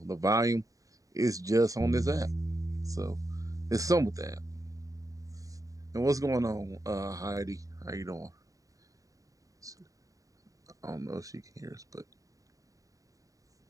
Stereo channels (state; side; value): late; left; 0.16 ms